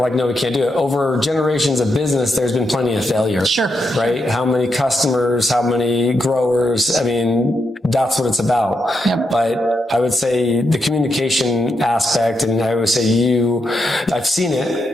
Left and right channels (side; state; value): both; normal; correlation 0.83